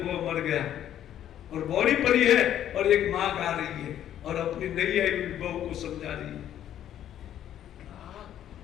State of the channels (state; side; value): quieter; right; 11.0 dB